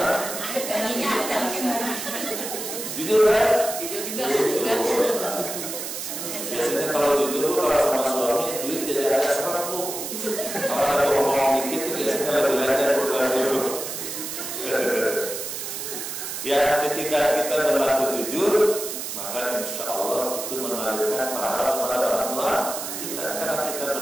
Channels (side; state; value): right; noise; hiss, 6 dB below the sound